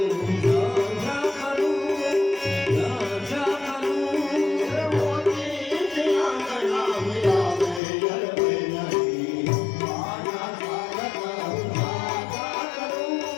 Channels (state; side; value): drops out; right; at 7.8 s